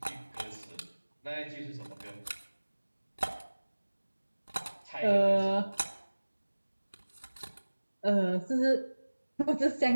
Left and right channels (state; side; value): inverted; both; correlation -1.00